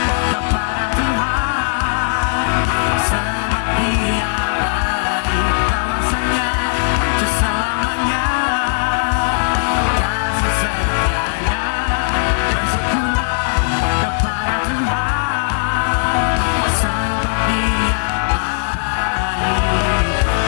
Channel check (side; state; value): right; silent; digital silence